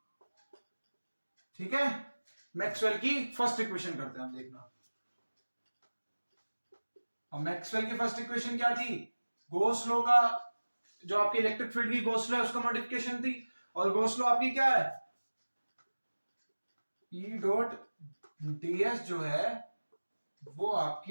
ठीक है, मैक्सवेल की फर्स्ट इक्वेशन करते हैं हम, देखना। और मैक्सवेल की फर्स्ट इक्वेशन क्या थी? गॉस लॉ का, जो आपकी इलेक्ट्रिक फील्ड की गॉस लॉ है उसका मॉडिफिकेशन थी। और गॉस लॉ आपकी क्या है? ई डॉट ds जो है वो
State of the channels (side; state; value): both; inverted; correlation -1.00